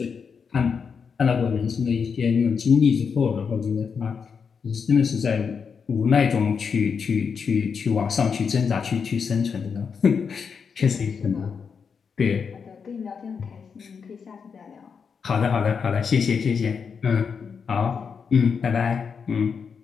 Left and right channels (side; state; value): right; quieter; 6.1 dB